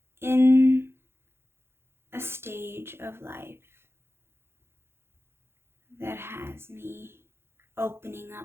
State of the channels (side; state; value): left; late; 0.12 ms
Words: in a stage of life that has me opening